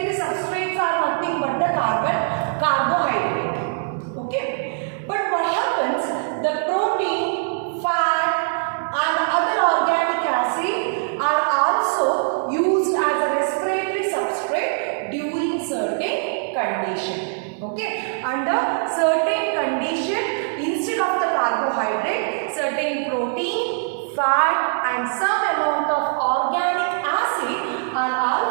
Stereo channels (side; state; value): left; silent; digital silence